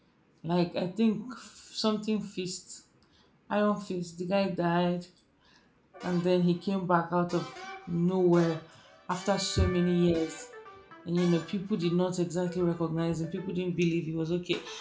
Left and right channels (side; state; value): both; identical; correlation 1.00